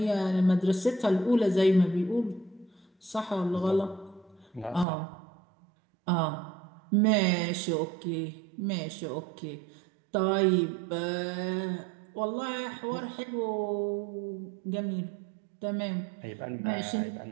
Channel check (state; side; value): drops out; left; at 4.9 s